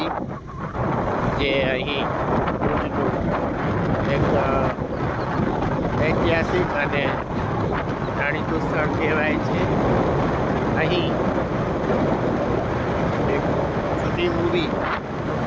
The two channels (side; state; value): both; identical; correlation 1.00